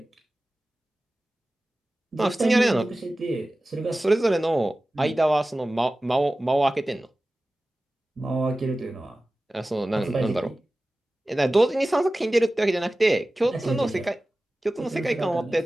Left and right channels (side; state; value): both; normal; correlation 0.96